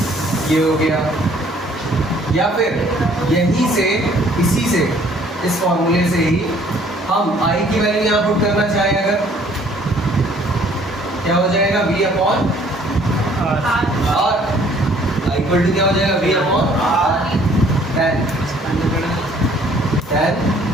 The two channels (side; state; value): both; normal; correlation 0.59